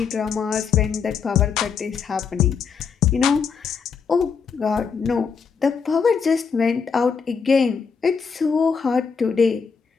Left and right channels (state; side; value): quieter; right; 5.9 dB